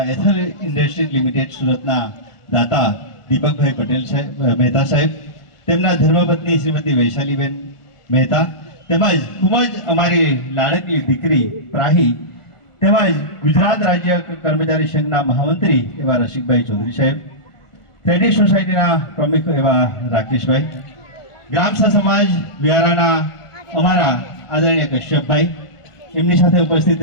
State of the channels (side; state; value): right; late; 1.4 ms